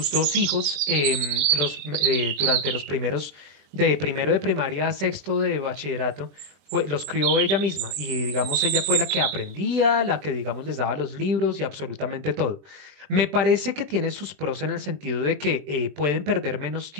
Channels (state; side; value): late; left; 20 ms